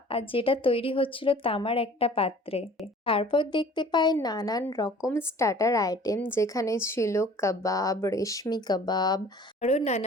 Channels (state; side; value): normal; both; correlation 0.49